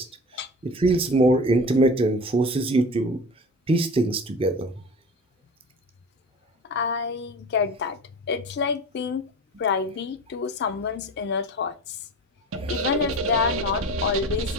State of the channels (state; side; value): normal; both; correlation 0.34